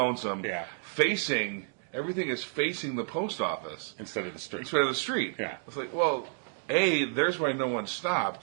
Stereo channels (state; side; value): silent; left; digital silence